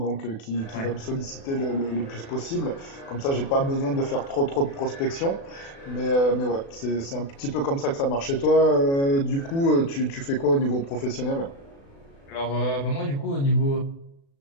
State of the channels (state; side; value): late; right; 36 ms